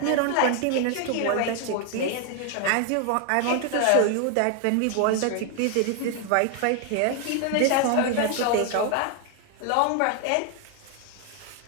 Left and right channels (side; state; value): both; different; correlation 0.00